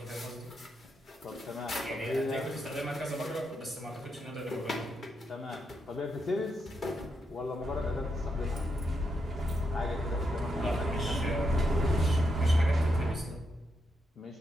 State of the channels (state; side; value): normal; both; correlation 0.82